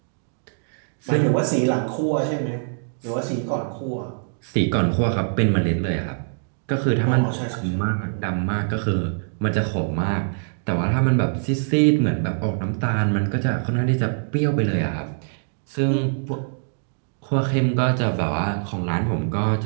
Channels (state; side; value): silent; left; digital silence